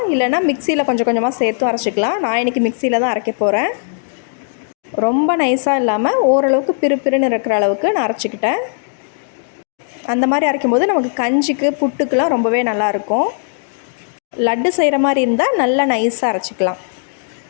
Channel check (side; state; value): right; silent; digital silence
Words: இல்லைனா மிக்சியில் கொஞ்சம் கொஞ்சமாக சேர்த்தும் அரைச்சிக்கலாம். நான் இன்றைக்கி மிக்சியில் தான் அரைக்க போகிறேன். ரொம்ப நைஸாக இல்லாமல் ஓரளவுக்கு பிறுபிறுன்னு இருக்கிற அளவுக்கு நான் அரைச்சிக்கிட்டேன். அந்த மாதிரி அரைக்கும்போது நமக்கு கஞ்சிக்கு, புட்டுக்கெலாம் ரொம்பவே நல்லாயிருக்கும். லட்டு செய்கிற மாதிரி இருந்தால் நல்லா நைஸாக அரைச்சிக்கலாம்.